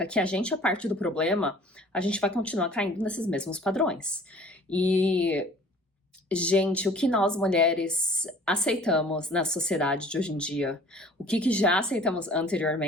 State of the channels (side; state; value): both; normal; correlation 0.50